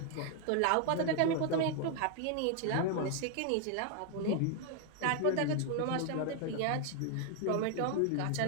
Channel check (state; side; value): different; both; correlation 0.00